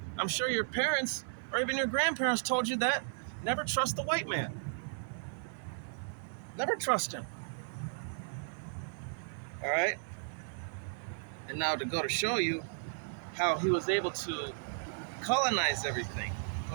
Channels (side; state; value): left; silent; 55 dB below the other